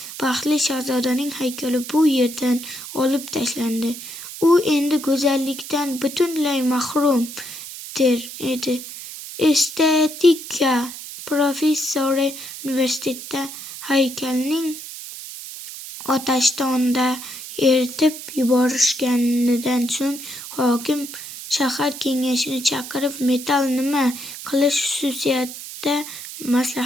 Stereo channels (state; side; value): noise; right; hiss, 11 dB below the sound